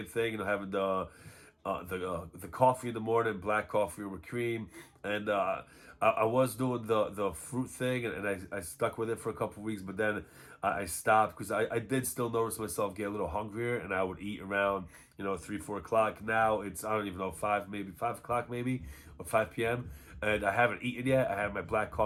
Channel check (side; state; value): both; identical; correlation 1.00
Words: thing, having the coffee in the morning, black coffee with cream, and I was doing the fruit thing, and I stuck with it for a couple of weeks, but then I stopped because I did still notice myself get a little hungrier, and I would eat around 3, 4 o'clock. Now it's, I don't even know, 5 o'clock maybe, or 5 p.m. And I haven't eaten yet. I had my black